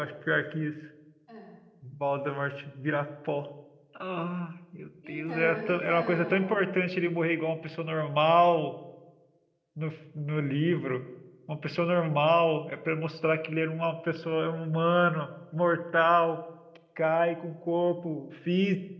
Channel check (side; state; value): both; identical; correlation 1.00